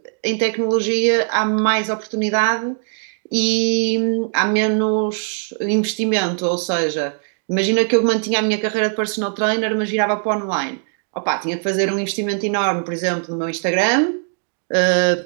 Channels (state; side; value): silent; left; digital silence